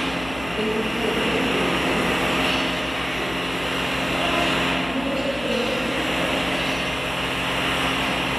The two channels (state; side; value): noise; left; hum, 14 dB below the sound